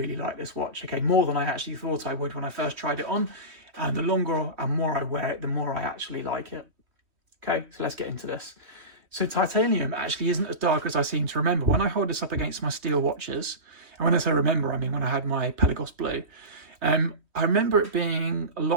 like this watch. Okay, more than I actually thought I would when I first tried it on. And the longer and more I wear it, the more I actually like it. Okay, so let's get into this. So titanium actually isn't as dark as I seem to remember. When I hold this up against my steel watches, and when I say remember, I mean when I had my Pelagos Blue, I remember it being a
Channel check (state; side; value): late; left; 3.1 ms